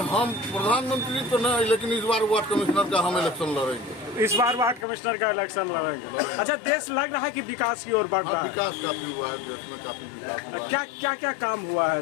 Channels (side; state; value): right; drops out; at 4.9 s